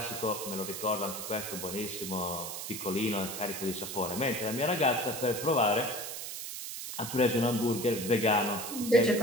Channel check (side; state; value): right; noise; hiss, 7 dB below the sound